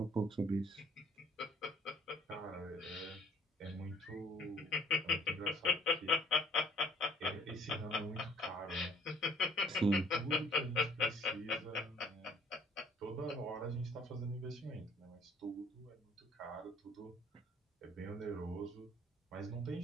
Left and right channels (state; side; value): normal; both; correlation 0.59